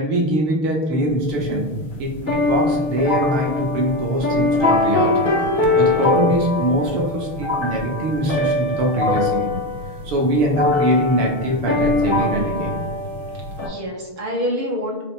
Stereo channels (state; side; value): late; left; 6.3 ms